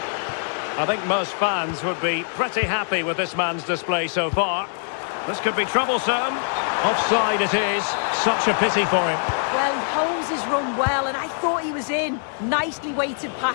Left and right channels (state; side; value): silent; right; digital silence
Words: I think most fans would be pretty happy with this man's display so far. This could be troublesome. Offside it is. Such a pity for him. Well, he holds his run well, and I thought he was in. Nicely weighted